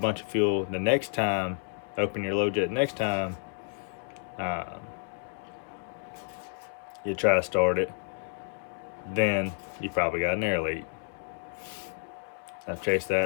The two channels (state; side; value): silent; right; 58 dB below the other